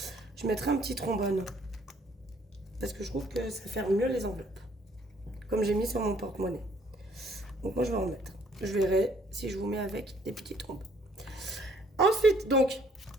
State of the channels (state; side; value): normal; both; correlation 0.62